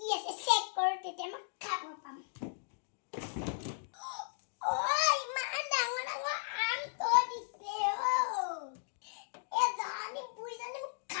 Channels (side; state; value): right; silent; digital silence